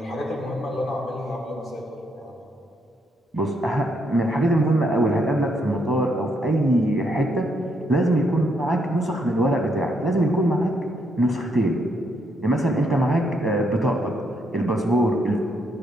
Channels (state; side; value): normal; both; correlation 0.75